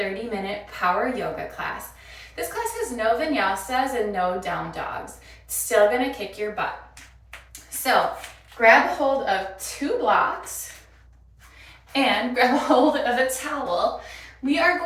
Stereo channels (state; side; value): identical; both; correlation 1.00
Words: power yoga class. This class has no vinyasas and no down dogs. It's still gonna kick your butt. So grab hold of 2 blocks and grab hold of a towel. We are